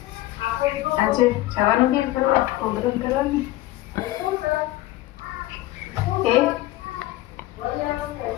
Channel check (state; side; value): quieter; right; 16.8 dB